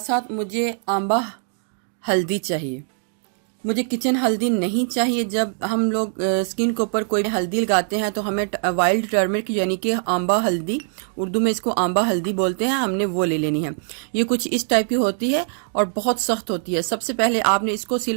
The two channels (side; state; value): left; silent; 61 dB below the other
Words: साथ मुझे आंबा हल्दी चाहिए। मुझे किचन हल्दी नहीं चाहिए। जब हम लोग स्किन के ऊपर कोई हल्दी लगाते हैं तो हमें वाइल्ड टर्मरिक यानी कि आंबा हल्दी, उर्दू में इसको आंबा हल्दी बोलते हैं, हमने वो ले लेनी है। ये कुछ इस टाइप की होती है और बहुत सख्त होती है। सबसे पहले आपने इसको